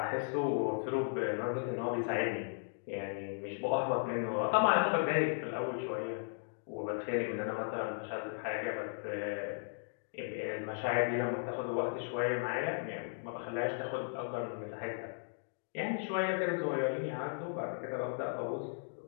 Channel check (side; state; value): right; silent; digital silence